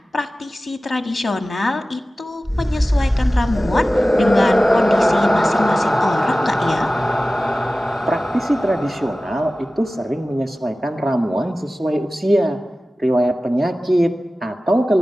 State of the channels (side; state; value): both; normal; correlation 0.96